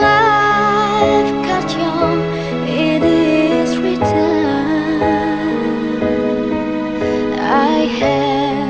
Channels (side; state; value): left; noise; rumble, 21 dB below the sound